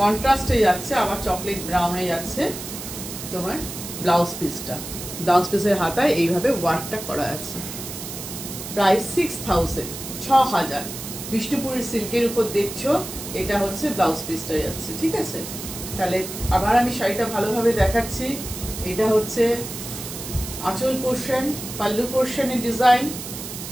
যাচ্ছে, আবার চকলেট ব্রাউনে যাচ্ছে তোমার ব্লাউজ পিসটা। ব্লাউজ পিসের হাতায় এইভাবে ওয়ার্কটা করা আছে। প্রাইস 6000, 6000। বিষ্ণুপুরের সিল্কের উপর দেখছো, এটা হচ্ছে ব্লাউজ পিসটা যাচ্ছে, ঠিক আছে। তাহলে আবার আমি শাড়িটা ভালোভাবে দেখাচ্ছি। এটা হচ্ছে আঁচল পোর্শন, পাল্লু পোর্শনের ডিজাইন,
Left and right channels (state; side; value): noise; right; hiss, 9 dB below the sound